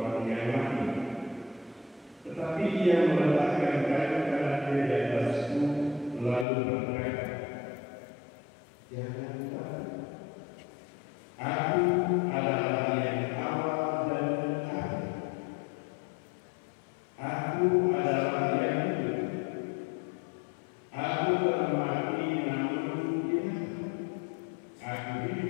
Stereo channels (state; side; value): drops out; right; at 6.5 s